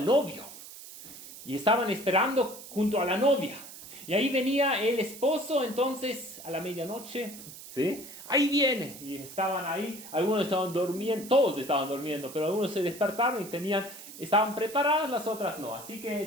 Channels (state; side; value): noise; right; hiss, 15 dB below the sound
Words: novio. Y estaban esperando junto a la novia. Y ahí venía el esposo, entonces, a la medianoche, ¿sí? Ahí viene. Y estaban ahí, algunos estaban durmiendo, todos estaban durmiendo, pero algunos se despertaron y estaban preparados, las otras no. Así que